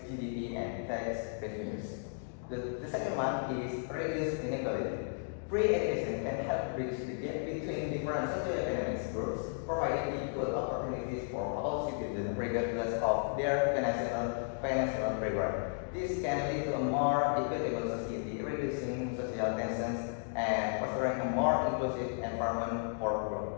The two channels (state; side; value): silent; right; digital silence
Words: GDP and tax revenues. The second one is reduce inequality. Free education can help bridge the gap between different socioeconomic groups, providing equal opportunities for all citizens regardless of their financial background. This can lead to a more equitable society, reducing social tensions and fostering a more inclusive environment for